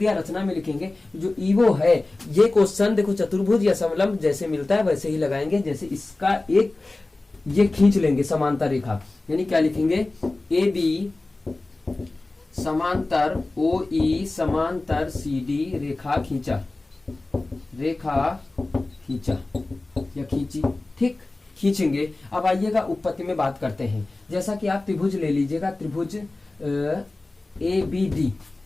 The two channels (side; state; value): right; quieter; 3.1 dB